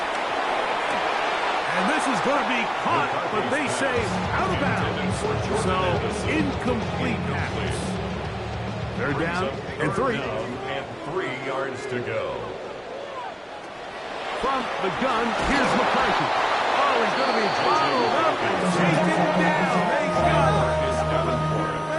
And this is going to be caught, but they say out of bounds. So, incomplete pass. They're down and 3. And 3 yards to go. From the gun, here's McCarthy. Oh, he's going to be followed up and taken down. They got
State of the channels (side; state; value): both; identical; correlation 1.00